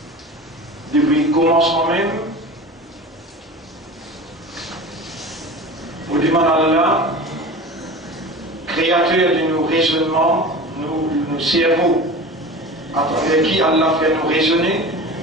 depuis le commencement même, pour demander à Allah, créateur de nos raisonnements, nos cerveaux, à travers qui Allah fait nous raisonner,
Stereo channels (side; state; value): both; normal; correlation 0.34